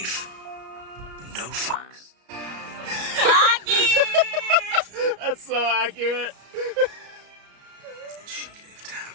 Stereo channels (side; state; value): left; late; 34 ms